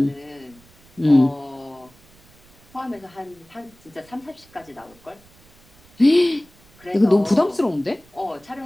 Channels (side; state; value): right; noise; rumble, 29 dB below the sound